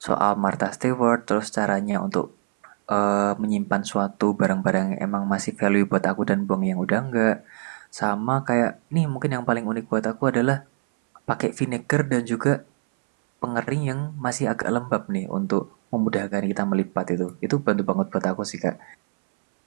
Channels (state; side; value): silent; left; 62 dB below the other